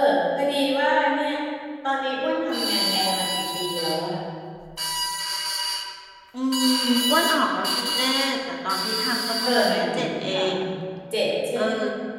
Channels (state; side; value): identical; both; correlation 1.00